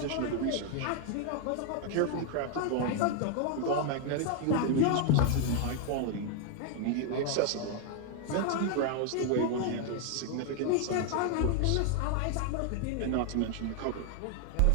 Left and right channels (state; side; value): different; both; correlation 0.00